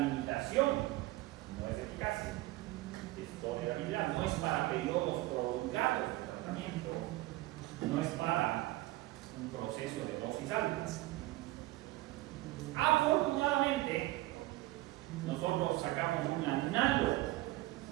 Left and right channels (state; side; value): quieter; left; 18.3 dB